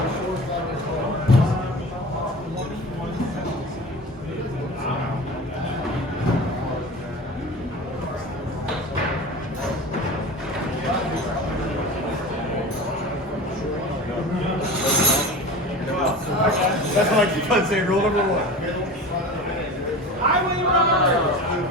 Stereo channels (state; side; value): normal; both; correlation 0.33